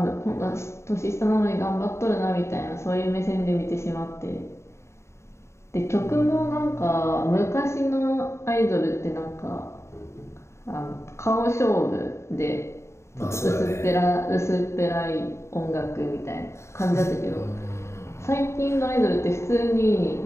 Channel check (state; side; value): late; right; 0.13 ms